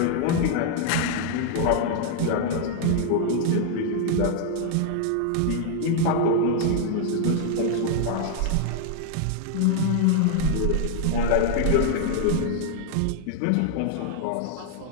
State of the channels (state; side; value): different; both; correlation 0.00